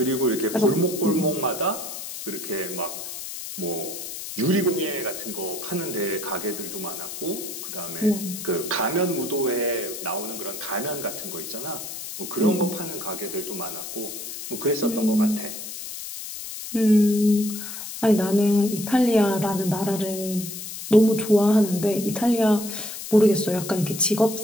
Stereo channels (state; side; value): noise; left; hiss, 9 dB below the sound